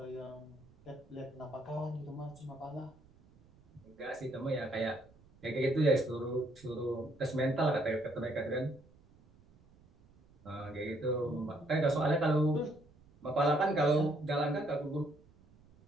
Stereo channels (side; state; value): right; noise; rumble, 27 dB below the sound